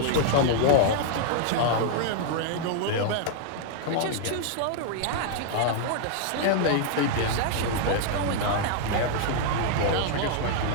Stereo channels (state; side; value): different; both; correlation -0.01